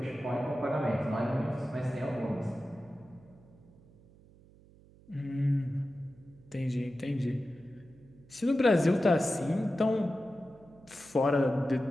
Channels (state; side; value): noise; right; hum, 25 dB below the sound